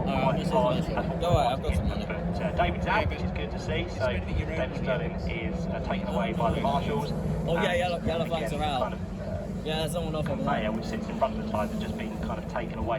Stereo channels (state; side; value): identical; both; correlation 1.00